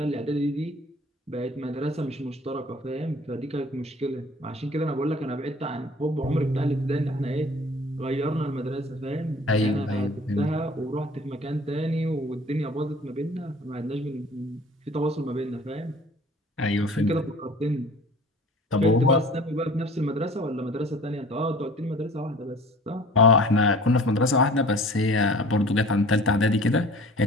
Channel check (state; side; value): normal; both; correlation 0.46